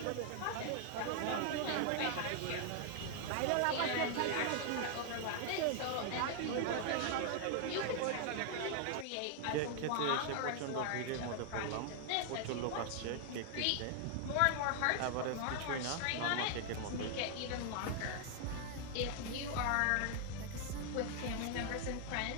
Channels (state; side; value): different; both; correlation 0.00